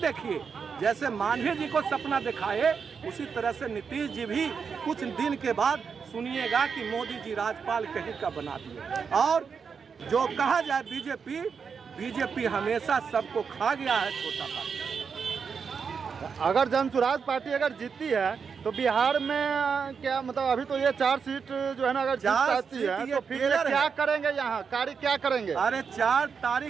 जैसे मांझी जी को सपना दिखाए उसी तरह से नीतीश जी भी कुछ दिन के बाद सुनिएगा कि मोदी जी राजपाल कहीं का बना दिए। और जो कहा जाए बीजेपी हमेशा सबको खा गया है, छोटा पार्टी। अगर जनसुराज पार्टी अगर जीतती है तो बिहार में क्या मतलब, अभी तो ये 4 सीट जो है ना अगर जीत जाती है तो फिर ये क्या करेंगे, यहाँ कार्य क्या करेंगे? अरे 4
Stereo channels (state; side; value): quieter; left; 6.0 dB